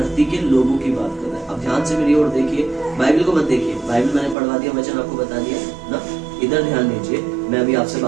के लोगों की बात कर रहा है। अब ध्यान से मेरी ओर देखिए, बाइबल को मत देखिए, बाइबल मैंने पढ़वा दिया, वचन आपको बता दिया ना। इधर ध्यान दीजिए, मैं अभी आपसे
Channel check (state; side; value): drops out; left; at 4.4 s